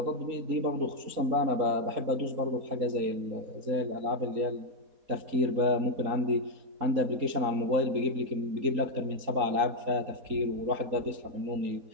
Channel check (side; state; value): left; late; 3.8 ms